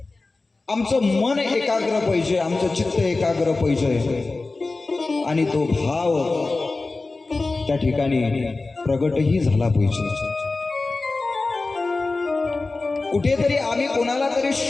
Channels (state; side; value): quieter; right; 3.5 dB